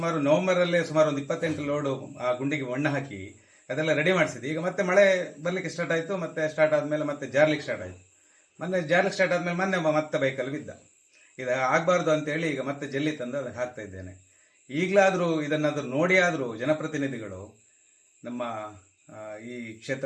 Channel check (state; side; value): identical; both; correlation 1.00